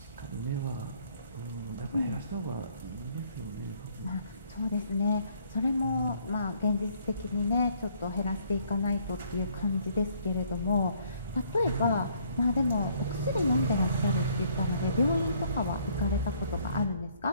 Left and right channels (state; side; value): inverted; both; correlation -0.64